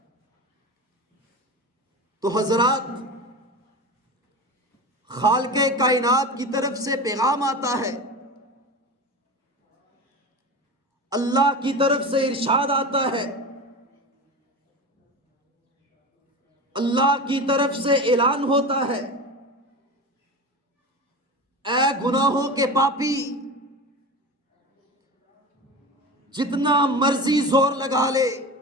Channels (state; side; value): normal; both; correlation 0.28